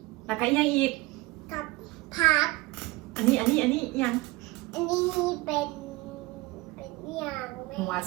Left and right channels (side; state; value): left; quieter; 21.5 dB